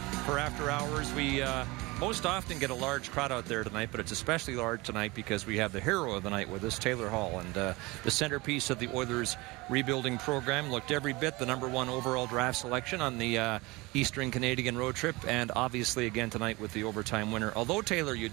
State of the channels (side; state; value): left; quieter; 23.3 dB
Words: for After Hours. We most often get a large crowd out there tonight, but it's especially large tonight because we have the hero of the night with us, Taylor Hall, and the centerpiece of the Oilers rebuilding program. Looked every bit the number one overall draft selection on the Eastern Canadian road trip, and obviously again tonight with the overtime winner. Although, Taylor, you